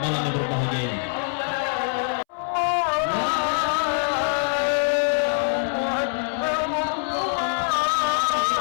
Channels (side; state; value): right; silent; 63 dB below the other